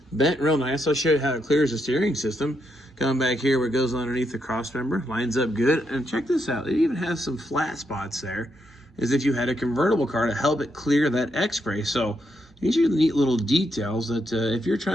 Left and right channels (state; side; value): normal; both; correlation 0.80